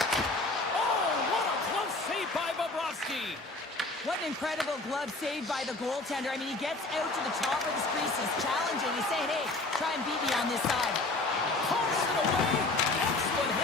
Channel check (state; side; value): quieter; right; 3.1 dB